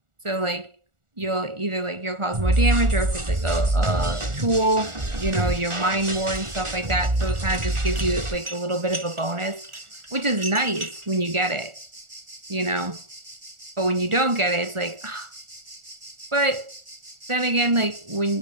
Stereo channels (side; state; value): left; late; 1.4 ms